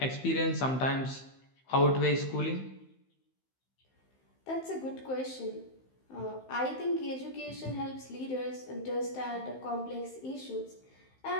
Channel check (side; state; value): right; late; 15 ms